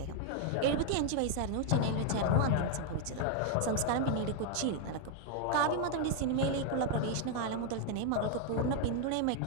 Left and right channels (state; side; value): different; both; correlation 0.00